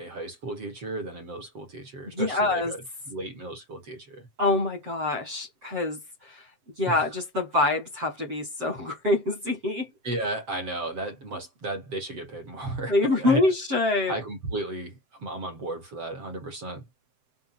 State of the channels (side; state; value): left; late; 7.7 ms